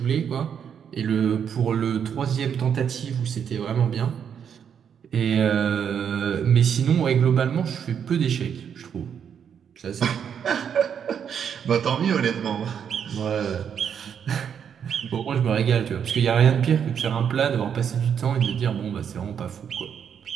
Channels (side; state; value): left; quieter; 7.9 dB